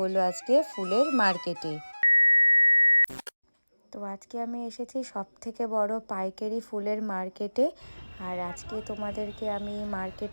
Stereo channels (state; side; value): inverted; both; correlation -1.00